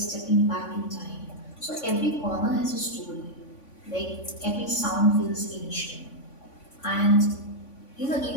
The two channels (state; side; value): late; right; 3.5 ms